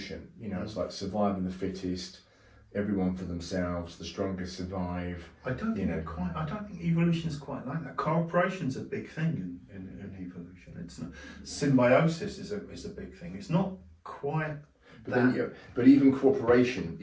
It's like surviving the fittest, everyone for themselves, the strongest survive. I don't think evolution is quite like that. Cooperation's a big thing in evolution. It's not, symbiosis is a big thing. It's not quite. But even cooperation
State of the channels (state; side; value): identical; both; correlation 1.00